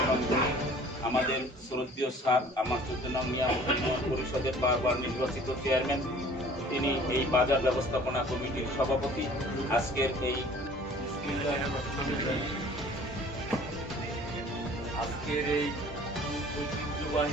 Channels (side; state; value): both; normal; correlation 0.50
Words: এবং গুণী, আমাদের শ্রদ্ধেয় স্যার, আমার 14 নং নিয়ামত পরিষদের বারবার নির্বাচিত চেয়ারম্যান, তিনি এই বাজার ব্যবস্থাপনা কমিটির সভাপতি। আজকের এই